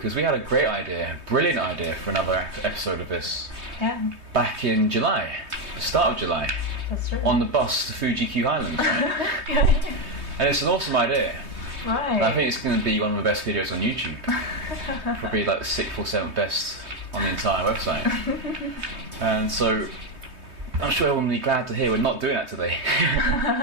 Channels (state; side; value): late; left; 3.2 ms